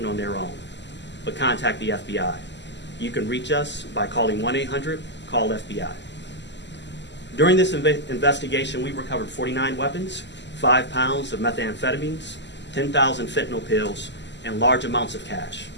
on their own, but contact the FBI. You can reach us by calling 1-800-CALL-FBI. During this investigation, we recovered 49 weapons, 5 pounds of methamphetamines, 10,000 fentanyl pills, and large amounts of cash.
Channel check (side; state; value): right; late; 0.51 ms